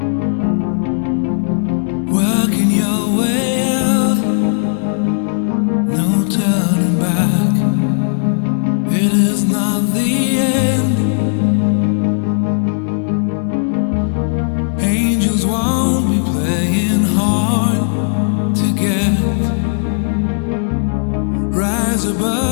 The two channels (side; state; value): right; silent; 69 dB below the other